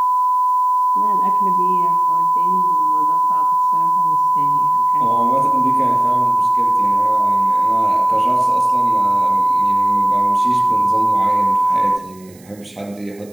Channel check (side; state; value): right; noise; hiss, 28 dB below the sound